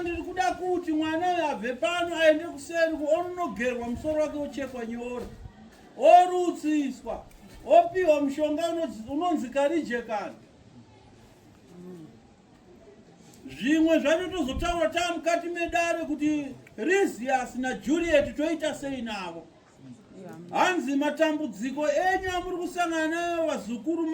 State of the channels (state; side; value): identical; both; correlation 1.00